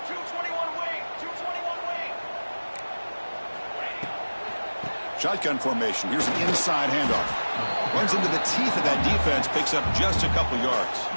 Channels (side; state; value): both; inverted; correlation -1.00